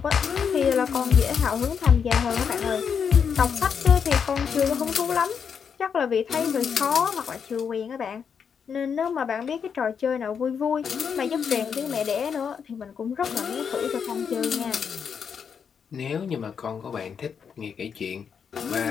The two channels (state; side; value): quieter; right; 6.9 dB